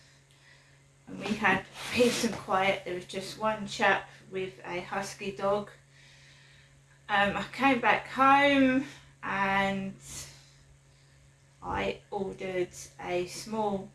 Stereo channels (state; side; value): identical; both; correlation 1.00